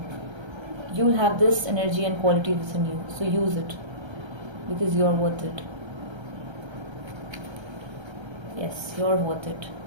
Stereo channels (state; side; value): late; left; 1.3 ms